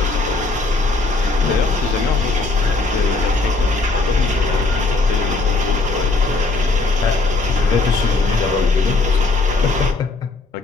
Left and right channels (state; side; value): quieter; right; 3.6 dB